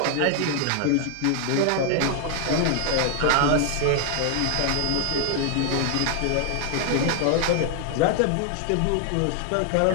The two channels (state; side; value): different; both; correlation 0.00